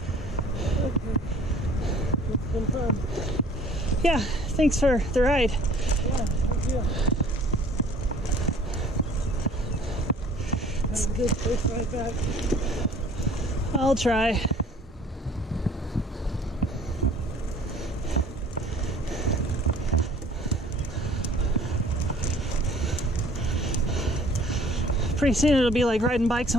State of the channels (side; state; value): both; normal; correlation 0.52